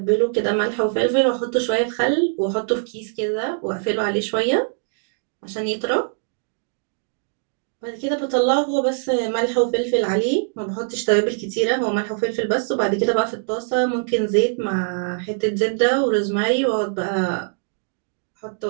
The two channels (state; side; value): silent; left; digital silence